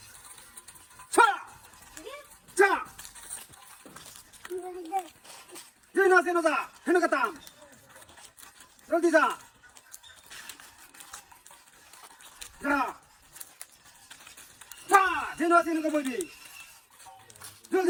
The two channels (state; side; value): identical; both; correlation 1.00